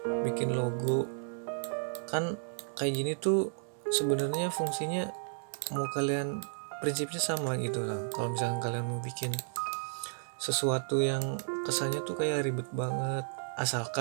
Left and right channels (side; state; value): left; silent; digital silence